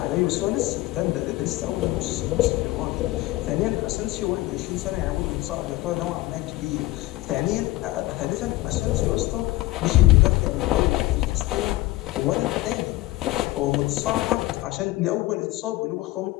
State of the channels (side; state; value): right; quieter; 18.1 dB